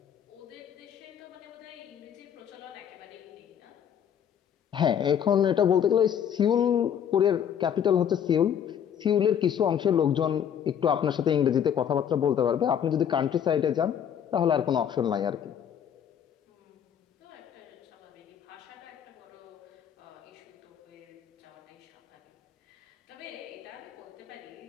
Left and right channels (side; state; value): right; quieter; 8.8 dB